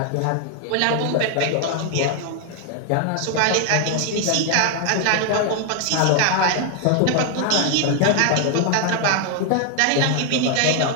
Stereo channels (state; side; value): different; both; correlation 0.00